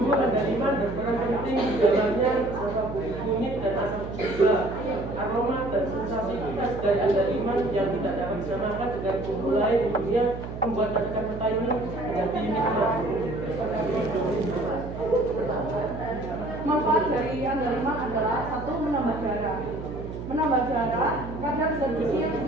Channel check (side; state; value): right; noise; hum, 9 dB below the sound